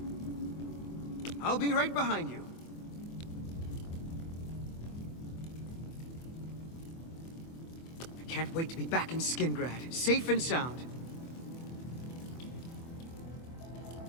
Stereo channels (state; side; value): late; right; 24 ms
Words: I'll be right behind you. I can't wait to be back in Skingrad, safe and sound.